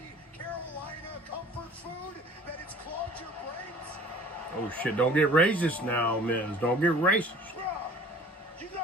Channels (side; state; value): both; normal; correlation 0.48